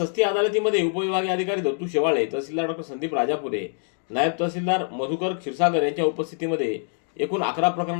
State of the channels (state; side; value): silent; right; 60 dB below the other